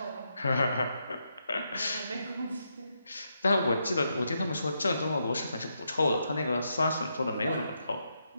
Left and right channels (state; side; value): inverted; both; correlation -0.81